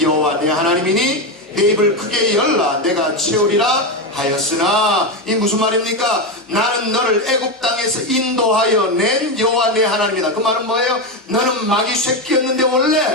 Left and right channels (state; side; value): normal; both; correlation 0.12